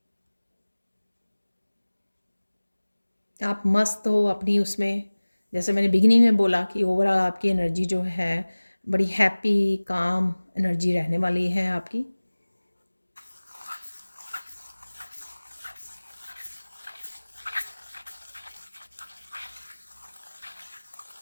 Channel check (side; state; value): both; inverted; correlation -1.00